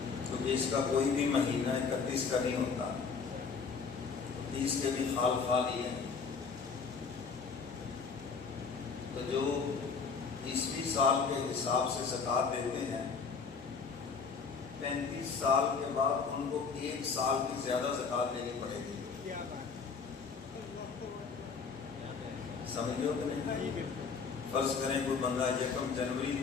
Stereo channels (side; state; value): right; quieter; 5.3 dB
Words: کیونکہ اس کا کوئی بھی مہینہ 31 کا نہیں ہوتا، 30 کے بھی خال ہی ہے. تو جو عیسوی سال کے حساب سے زکوٰۃ دیتے ہیں، 35 سال کے بعد ان کو 1 سال کی زیادہ زکوٰۃ دینی پڑے گی. سمجھو کہ نہیں؟ فرض کریں کوئی بندہ 1 جنوری